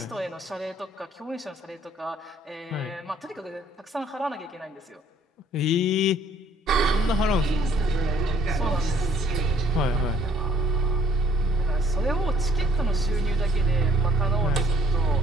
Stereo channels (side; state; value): both; normal; correlation 0.61